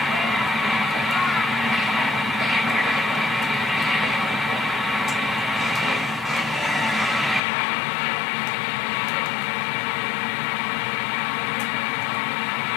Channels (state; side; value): drops out; right; at 7.4 s